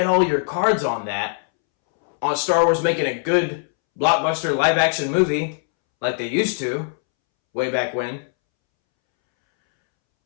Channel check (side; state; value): right; silent; 65 dB below the other